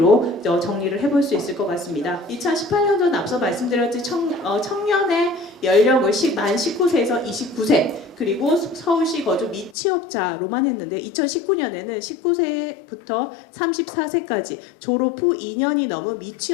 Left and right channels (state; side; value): drops out; right; at 9.8 s